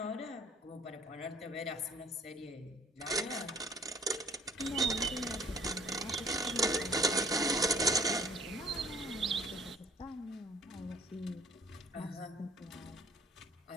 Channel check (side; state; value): both; normal; correlation 0.55